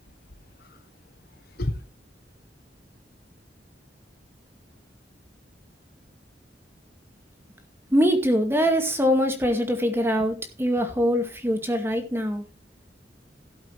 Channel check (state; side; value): normal; both; correlation 0.74